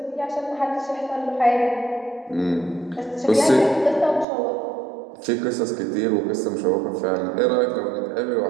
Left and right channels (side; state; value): left; drops out; at 4.2 s